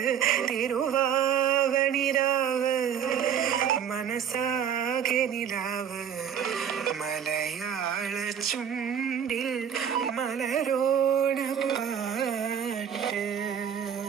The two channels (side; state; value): left; quieter; 8.5 dB